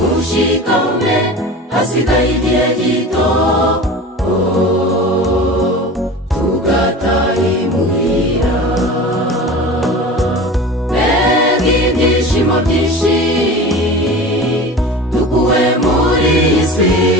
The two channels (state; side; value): normal; both; correlation 0.34